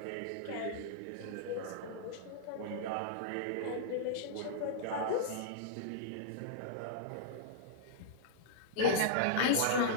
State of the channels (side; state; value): both; different; correlation -0.02